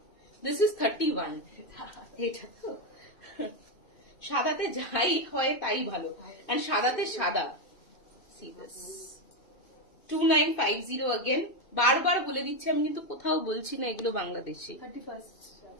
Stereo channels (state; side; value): late; right; 2.5 ms